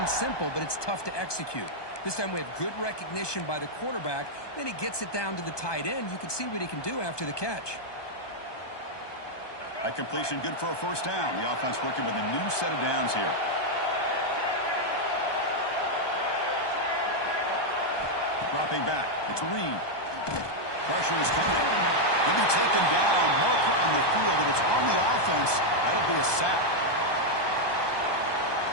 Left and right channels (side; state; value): right; late; 1.2 ms